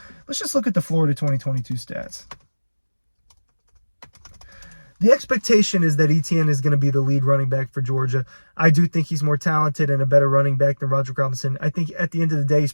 Let's just look at the Florida 2022 stats. The expectation is that Etienne is going to be the lead running back for Georgia. I do think he's more talented and a better running back than Roderick Robinson. I think at the end of the day, he's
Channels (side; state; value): both; inverted; correlation -1.00